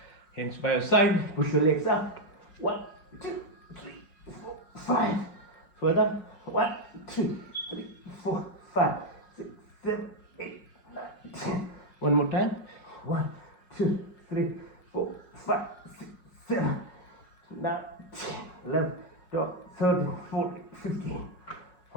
Hands by your side. Push your legs up. 1, 2, 3, 4, 5. Further. 1, 2, 3, 4, 5, 6, 7, 8, 9, 10. One more time. 1, 2, 3, 4, 5, 6, 7, 9, 10, 11, 12, 13, 14, 15.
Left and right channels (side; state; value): right; late; 5.5 ms